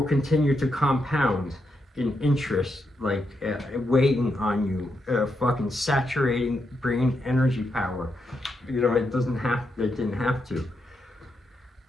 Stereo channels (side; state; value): both; normal; correlation 0.83